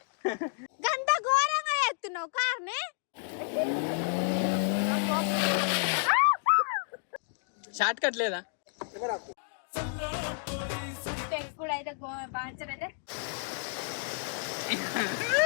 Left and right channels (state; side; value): silent; right; 57 dB below the other